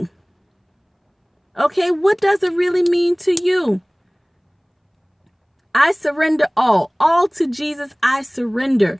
Okay, what does it really mean to you? I surrender all to Jesus. I surrender.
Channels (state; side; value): identical; both; correlation 1.00